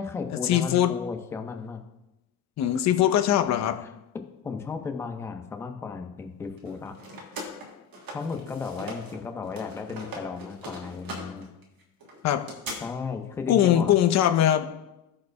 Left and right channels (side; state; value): right; quieter; 9.3 dB